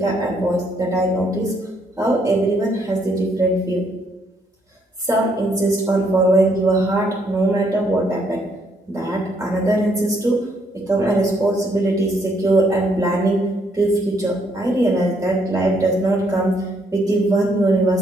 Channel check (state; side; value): normal; both; correlation 0.71